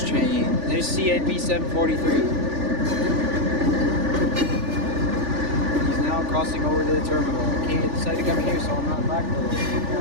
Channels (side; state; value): left; late; 3.4 ms